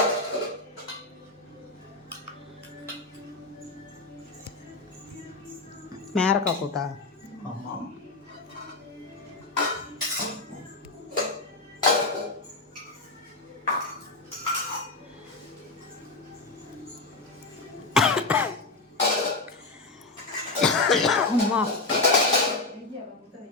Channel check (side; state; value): right; quieter; 3.4 dB